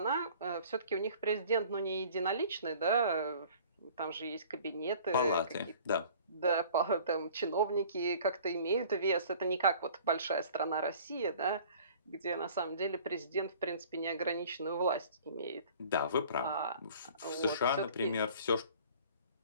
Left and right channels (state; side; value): inverted; both; correlation -0.49